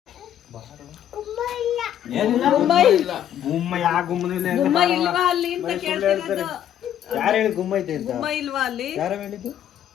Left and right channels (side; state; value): right; quieter; 10.4 dB